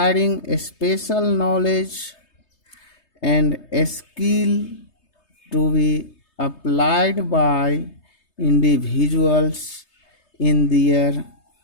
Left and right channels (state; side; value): late; right; 3.2 ms